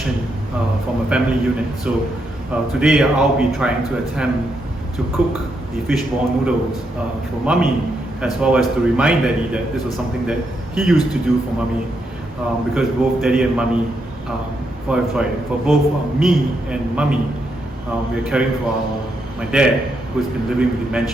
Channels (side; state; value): both; normal; correlation 0.80